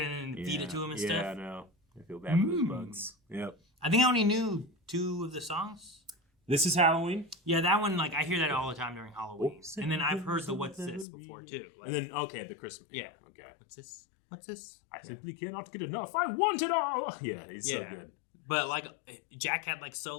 in and feed it to him and stuff. Yeah, I know. I feel bad for those bugs. Yep. I think I only knew 2 of the songs. This is Halloween. Yeah, that one, like, I hear that all the time during Halloween. And then I've heard the What's This before, too. Like, and then, okay, the Christmas. Yeah. Okay. What's this? What's this? I simply cannot get enough. I want it all. Yeah, he's so good. But, like, Jack had, like,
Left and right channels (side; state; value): right; drops out; at 11.1 s